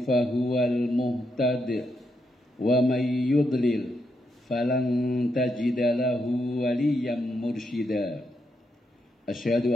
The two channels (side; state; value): both; normal; correlation 0.81